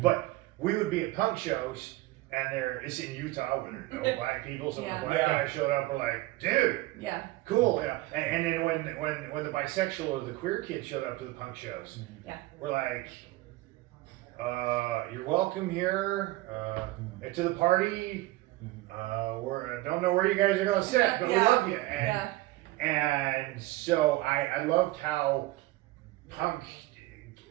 But we would be at punk shows, and it's in Utah where there are no black people. So when the black guys showed up, we're like, dude, cool. You know? And then when the bisexual or the queer kid showed up to the punk shows, we're like, you're welcome here. To the party. I don't know where you guys are gonna sit, but we love you. And so I loved how punk,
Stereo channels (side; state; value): left; quieter; 18.6 dB